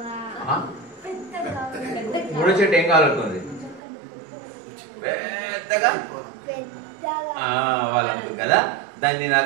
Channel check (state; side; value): drops out; left; at 3.8 s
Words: మూడో చెట్టు ఏం కావాలనుకుంది? పెద్దగా వాళ్ళు అనుకుంది కదా. దాన్ని